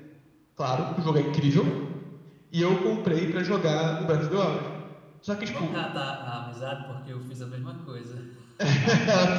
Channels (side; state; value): both; identical; correlation 1.00